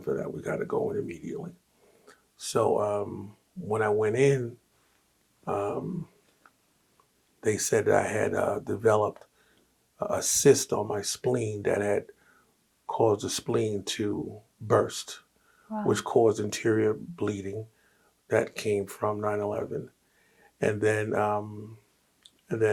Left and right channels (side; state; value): both; identical; correlation 1.00